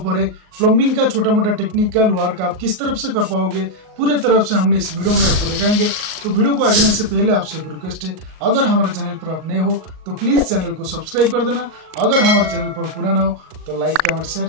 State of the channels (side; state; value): left; late; 38 ms